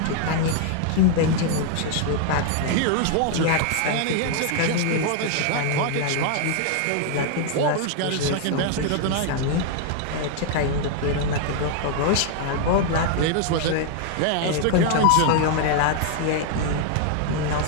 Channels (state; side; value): different; both; correlation 0.00